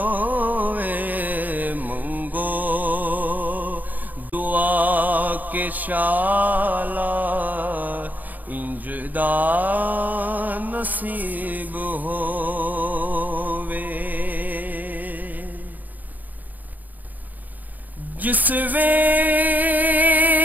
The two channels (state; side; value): late; left; 0.083 ms